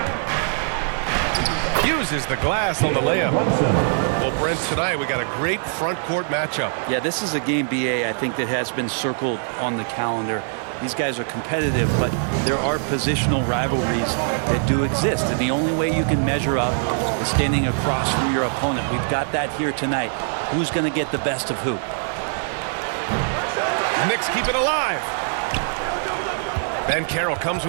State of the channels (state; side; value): silent; left; digital silence